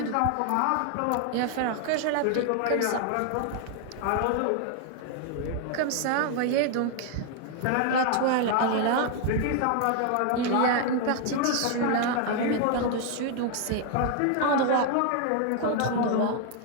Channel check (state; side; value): different; both; correlation 0.00